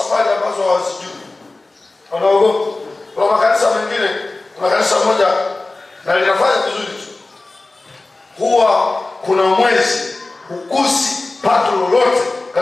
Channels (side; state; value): right; quieter; 3.2 dB